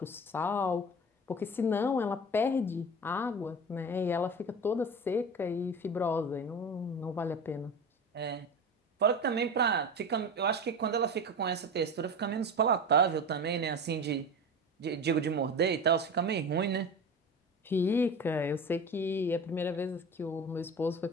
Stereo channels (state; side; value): normal; both; correlation 0.30